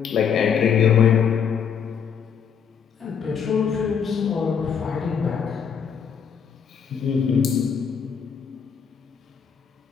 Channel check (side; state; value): right; quieter; 7.2 dB